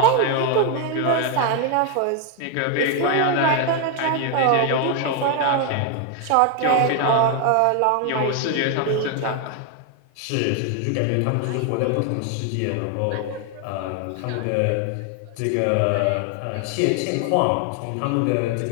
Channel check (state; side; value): different; both; correlation 0.00